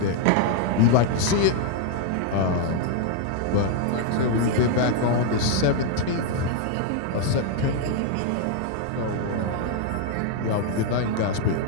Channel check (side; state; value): both; different; correlation 0.00